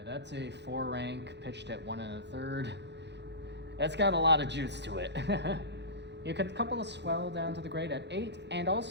That's a 4-rank pitched at 1 1/3. That's got a lot of juice to it. You could couple a swell down to the grate at 8, and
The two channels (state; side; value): late; left; 0.50 ms